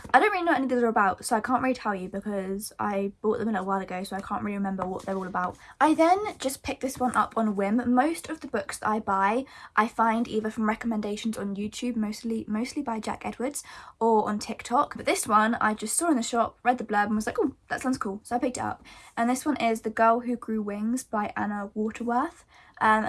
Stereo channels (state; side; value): identical; both; correlation 1.00